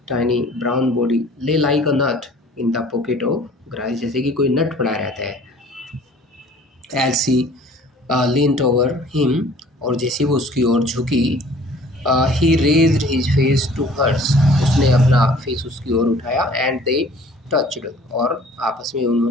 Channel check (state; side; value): normal; both; correlation 0.51